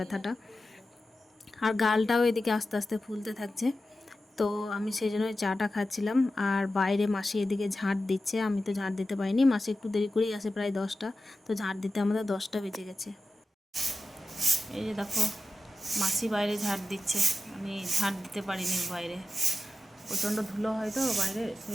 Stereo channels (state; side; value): normal; both; correlation 0.93